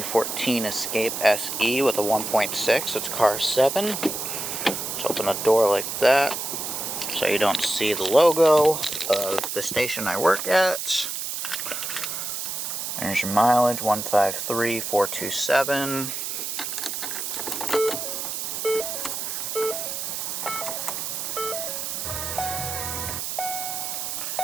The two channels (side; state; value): right; noise; hiss, 4 dB below the sound